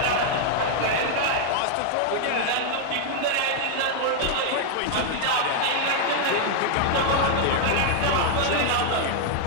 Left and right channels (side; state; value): both; different; correlation 0.00